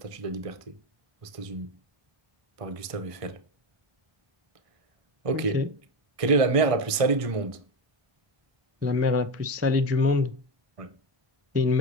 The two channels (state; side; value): late; left; 1.5 ms